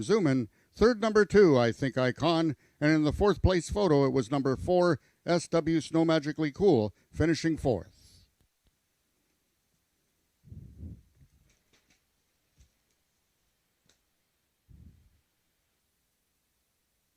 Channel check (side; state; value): both; identical; correlation 1.00